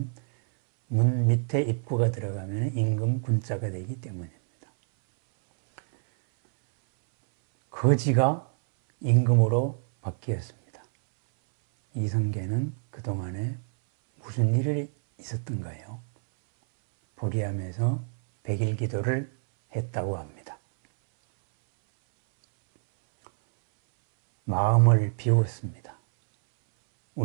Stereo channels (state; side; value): silent; left; 60 dB below the other